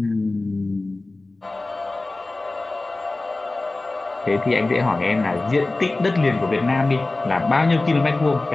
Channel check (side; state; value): right; quieter; 3.1 dB